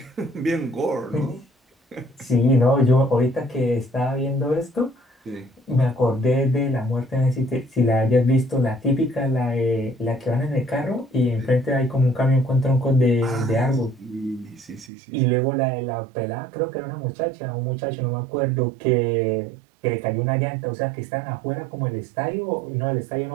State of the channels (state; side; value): drops out; left; at 14.9 s